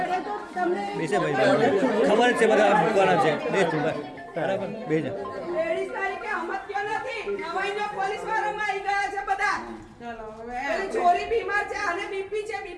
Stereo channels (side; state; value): both; identical; correlation 1.00